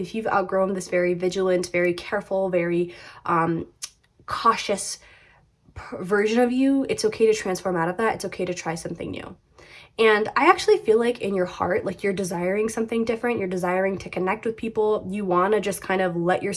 you've outgrown this very vigilant, very careful, very cautious version of you, it's okay to transform out of that. It's okay to try something new. And I actually feel like in your heart, like you're desiring something different. You're desiring to connect with people. You want to just kind of let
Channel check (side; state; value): both; identical; correlation 1.00